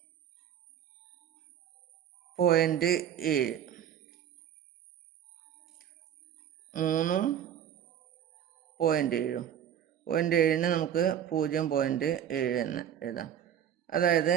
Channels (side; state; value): left; quieter; 9.7 dB